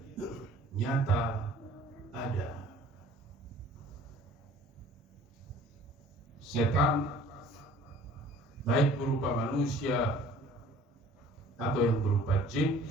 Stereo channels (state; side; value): normal; both; correlation 0.50